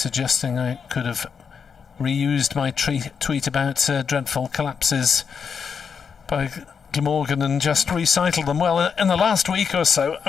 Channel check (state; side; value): quieter; right; 6.4 dB